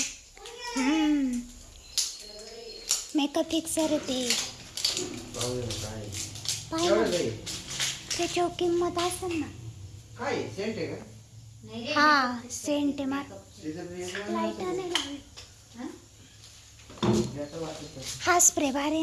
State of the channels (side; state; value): both; identical; correlation 1.00